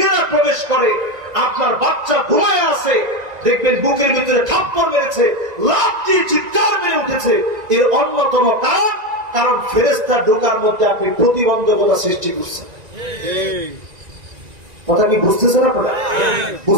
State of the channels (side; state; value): left; late; 1.9 ms